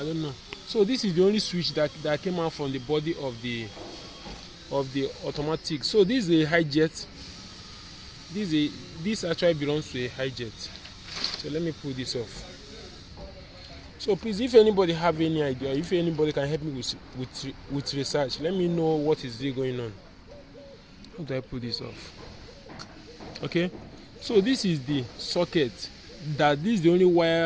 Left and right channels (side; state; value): both; identical; correlation 1.00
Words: don't know. So this is the only switch that came out from the body of the automatic. So this is a hijet. This actually belongs to a hijet. So let me pull this off. So please, if anybody have any idea, if anybody can help me with research, let me know what is really going on. How do I pull this off? Okay, so this is the socket. This is the only